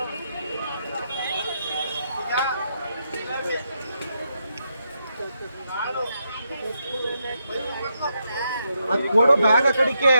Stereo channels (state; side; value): inverted; both; correlation -0.82